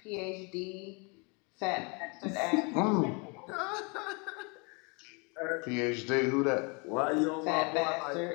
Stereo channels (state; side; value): quieter; right; 32.0 dB